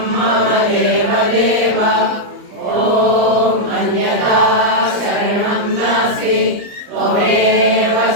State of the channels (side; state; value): left; late; 34 ms